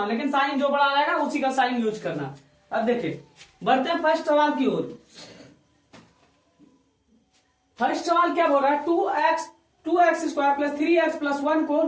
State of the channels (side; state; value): both; identical; correlation 1.00